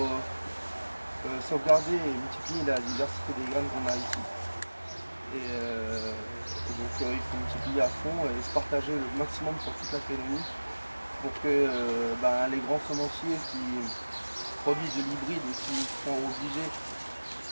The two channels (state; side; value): inverted; both; correlation -1.00